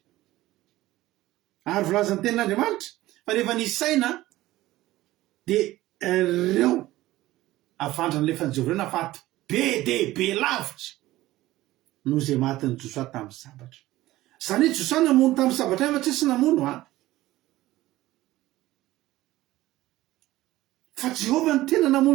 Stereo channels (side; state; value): left; quieter; 16.6 dB